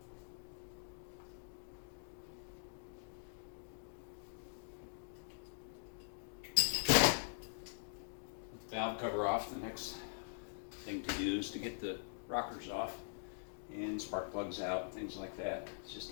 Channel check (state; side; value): silent; right; digital silence